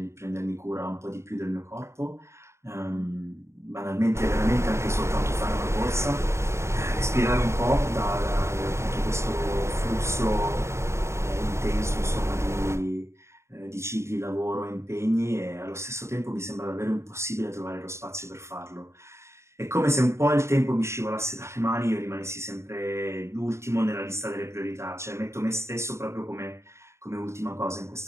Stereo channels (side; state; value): left; late; 0.13 ms